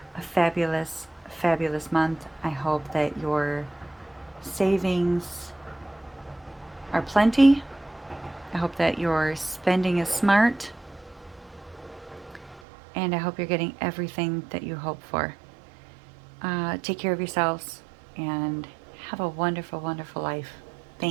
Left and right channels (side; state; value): left; drops out; at 12.6 s